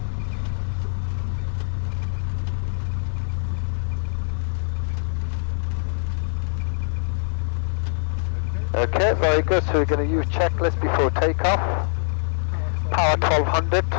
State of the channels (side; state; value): right; silent; digital silence